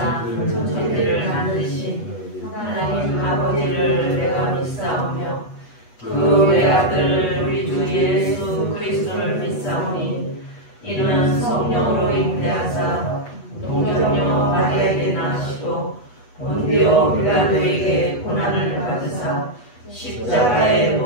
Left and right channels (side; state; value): right; late; 8.2 ms